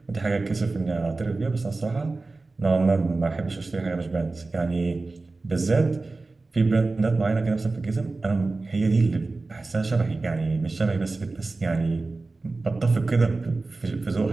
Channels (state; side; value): quieter; left; 3.5 dB